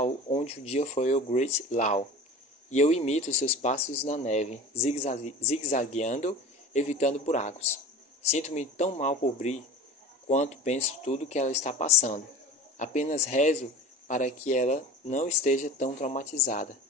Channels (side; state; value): both; normal; correlation 0.36